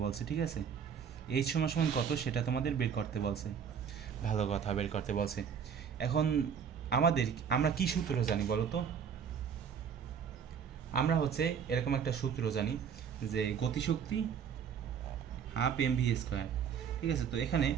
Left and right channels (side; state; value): left; quieter; 7.4 dB